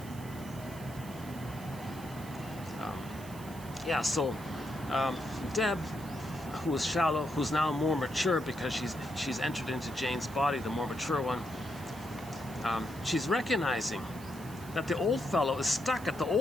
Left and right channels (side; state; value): right; noise; hiss, 18 dB below the sound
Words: Yeah, so Deb, who was shallow, who's now more mature because she's entered into Jane's body, the more mature one. She's recognizing that the old fellow is stuck at the